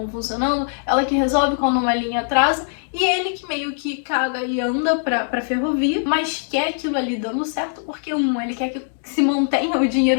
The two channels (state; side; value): silent; right; digital silence